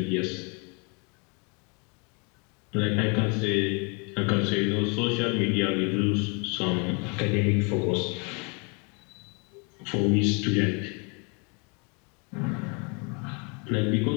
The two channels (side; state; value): right; quieter; 34.0 dB